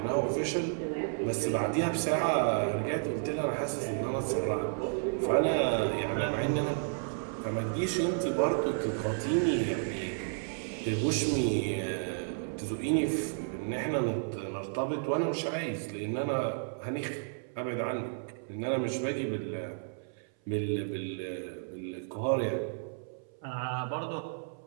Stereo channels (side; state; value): left; silent; 56 dB below the other